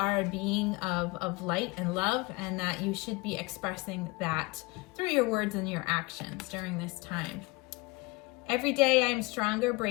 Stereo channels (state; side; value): quieter; right; 24.8 dB